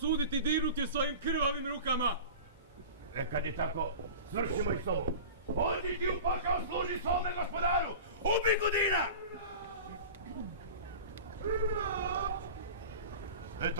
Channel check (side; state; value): both; inverted; correlation -0.34